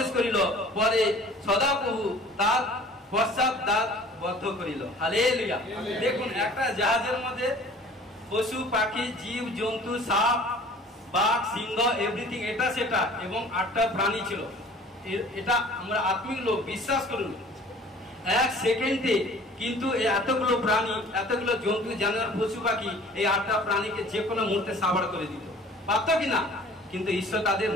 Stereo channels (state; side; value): normal; both; correlation 0.48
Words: করিল। পরে সদাপ্রভু তার পশ্চাৎ দ্বার বদ্ধ করিল। হালেলুয়া। দেখুন একটা জাহাজের মধ্যে পশু পাখি, জীব জন্তু, সাপ, বাঘ, সিংহ, এভরিথিং, এটা সেটা, এবং 8টা প্রাণী ছিল। এটা আমরা আত্মিক লোক, বিশ্বাস করুন 1 সেকেন্ডে কিন্তু এতগুলো প্রাণী, এতগুলো জন্তু, জানোয়ার, পশু পাখি, এই 8টা প্রাণীকে যে কোনো মুহূর্তে সাবাড় করে দিত, পারত কিনা? কিন্তু ঈশ্বর তাদের